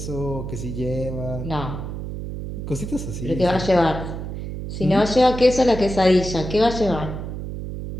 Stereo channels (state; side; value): noise; right; hum, 7 dB below the sound